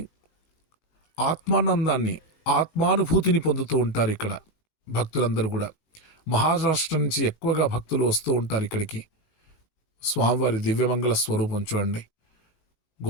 ఆత్మానందాన్ని, ఆత్మానుభూతిని పొందుతూ ఉంటారు. ఇక్కడ భక్తులందరూ కూడా మహారాష్ట్ర నుంచి ఎక్కువగా భక్తులు వస్తూ ఉంటారు ఇక్కడికి. స్వామివారి దివ్యమంగళ స్వరూపం చూడండి,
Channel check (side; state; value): right; late; 18 ms